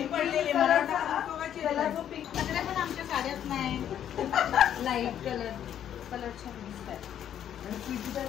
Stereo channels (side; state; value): right; quieter; 10.0 dB